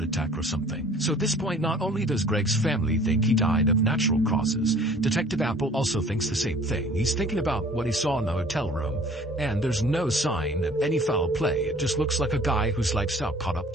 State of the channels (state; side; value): normal; both; correlation 0.51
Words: attack or something. So at this point, not only does Greg's family think he died of natural causes, Detective Apple also thinks the same thing. He's thinking about what he saw in the hotel room, and there's no sign of any foul play. It just looks like a guy whose lifestyle caught up